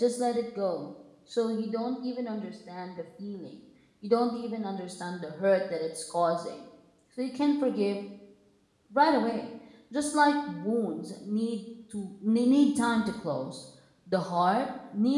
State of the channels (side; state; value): both; identical; correlation 1.00